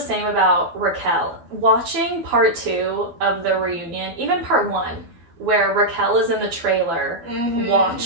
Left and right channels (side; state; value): left; late; 12 ms